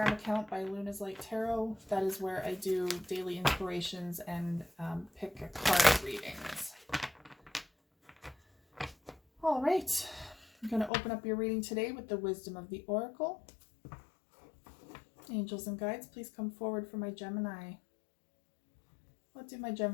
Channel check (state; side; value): drops out; right; at 10.9 s